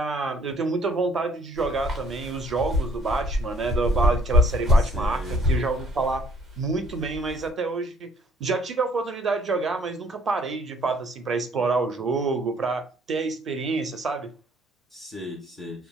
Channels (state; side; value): normal; both; correlation 0.61